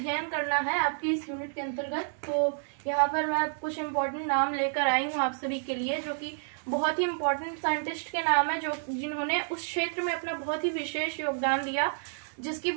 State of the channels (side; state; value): left; silent; digital silence